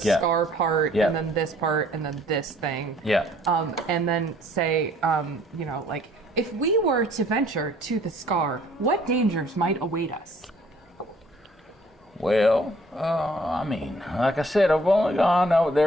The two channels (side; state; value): both; normal; correlation 0.59